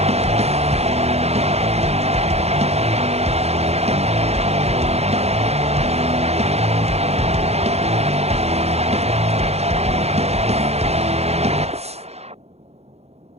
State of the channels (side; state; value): left; late; 0.31 ms